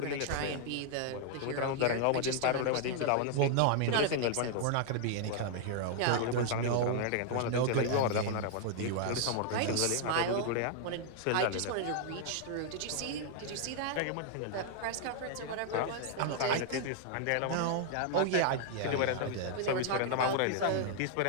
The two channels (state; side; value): different; both; correlation 0.00